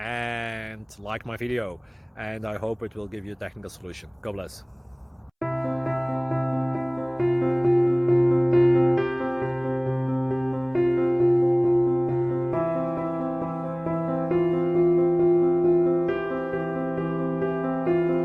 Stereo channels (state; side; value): identical; both; correlation 1.00